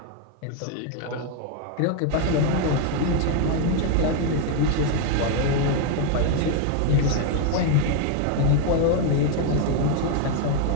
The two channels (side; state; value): both; different; correlation 0.01